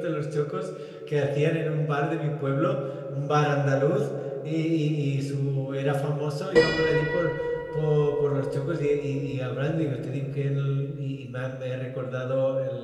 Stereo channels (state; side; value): identical; both; correlation 1.00